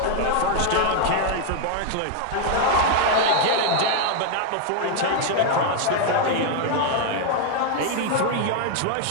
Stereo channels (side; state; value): both; different; correlation 0.00